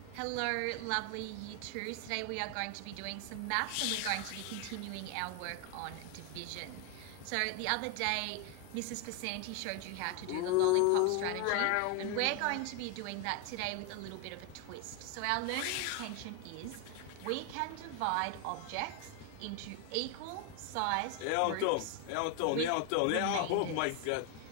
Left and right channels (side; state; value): both; different; correlation 0.01